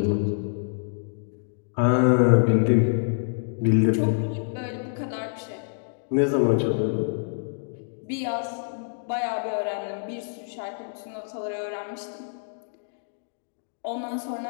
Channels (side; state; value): right; silent; digital silence